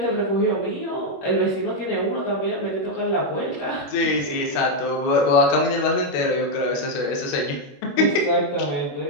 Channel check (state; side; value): late; right; 21 ms